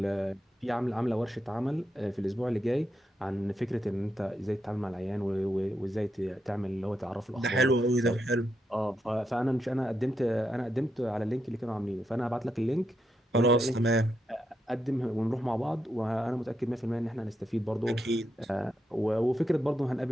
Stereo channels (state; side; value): normal; both; correlation 0.83